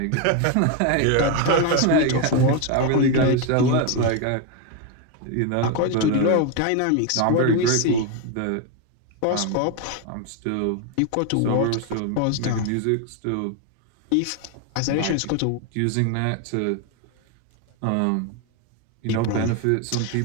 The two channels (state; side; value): different; both; correlation 0.01